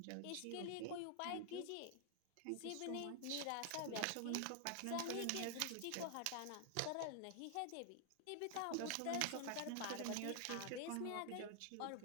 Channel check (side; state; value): both; different; correlation 0.00